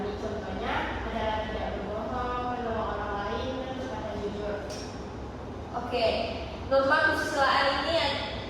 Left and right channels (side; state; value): both; identical; correlation 1.00